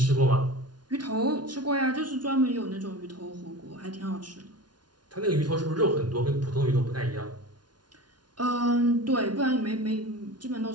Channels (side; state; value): left; late; 0.70 ms